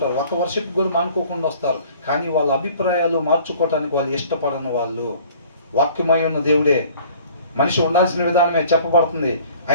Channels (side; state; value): both; inverted; correlation -0.52